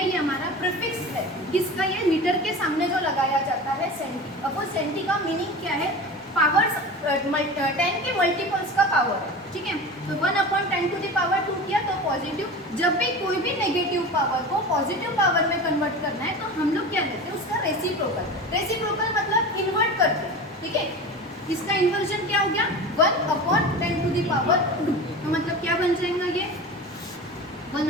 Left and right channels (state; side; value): normal; both; correlation 0.32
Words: ये हमारा प्रीफिक्स है, किसका, ये मीटर के सामने जो लगाया जाता है सेंटी। अब वो सेंटी का मीनिंग क्या है, पावर्स 10 के मल्टीपल्स का पावर है। ठीक है, तो 1/10 टू द पावर 2 किया तो पॉजिटिव। जब भी कोई भी नेगेटिव पावर को पॉजिटिव पावर में कन्वर्ट करना है तो हम लोग क्या लेते हैं, उसका रेसिप्रोकल। रेसिप्रोकल मतलब इन्वर्ट करते हैं। ठीक है, इसका इन्वर्जन क्या हो गया, 1/10 टू द पावर 2। तो मतलब क्या बन जाएगा ये,